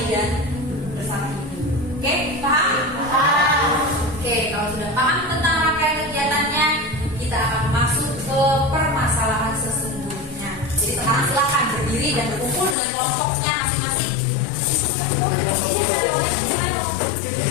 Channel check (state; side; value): drops out; right; at 12.8 s